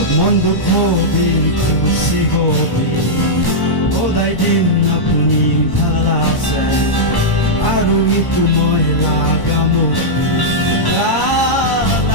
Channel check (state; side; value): late; right; 1.1 ms